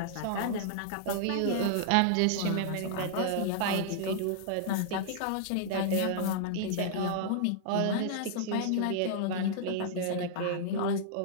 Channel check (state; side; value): different; both; correlation -0.01